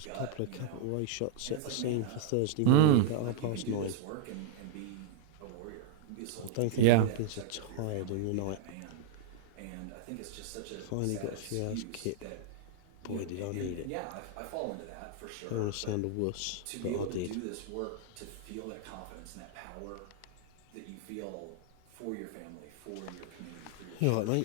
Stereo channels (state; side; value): different; both; correlation -0.01